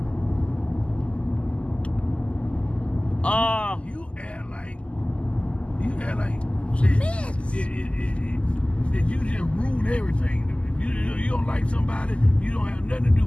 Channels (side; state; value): right; late; 0.056 ms